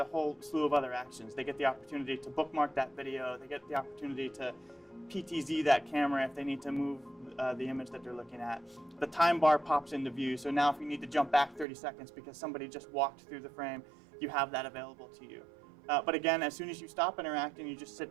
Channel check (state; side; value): drops out; left; at 11.7 s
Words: whole slew of other actions. They get the opportunity to bookmark that video, they get the opportunity to PTZ that camera if they need to move the image that they're looking at. The time bar pops into view, so now if you need to jump back 30 seconds because somebody just walked through the frame, you have that available to you. But again, as soon as you stop interacting, you just